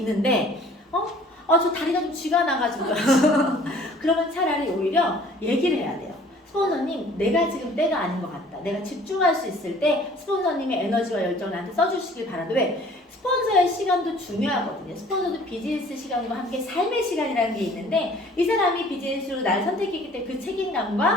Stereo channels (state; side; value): normal; both; correlation 0.53